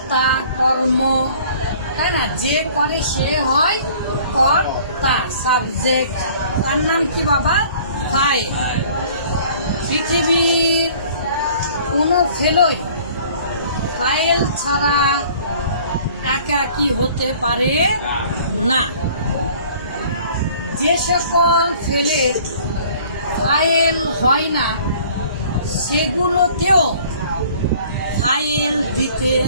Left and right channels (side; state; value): both; inverted; correlation -0.52